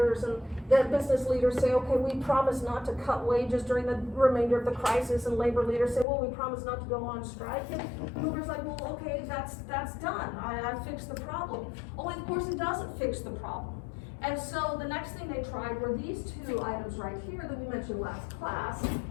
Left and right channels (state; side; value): drops out; right; at 6.1 s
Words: and the business leaders say, okay, we promise not to cut wages during the remainder of the crisis, and labor leaders say, well, we promise not to go on strike. And Hoover's like, well, okay, that's done. I fixed the problem. Only, of course, it doesn't fix the problem. And so the next thing they tried were these 2 items right here that we mentioned last class.